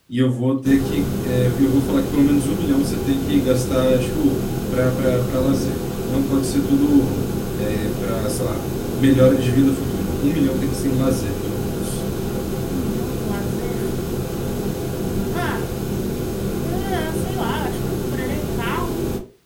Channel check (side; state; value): both; identical; correlation 1.00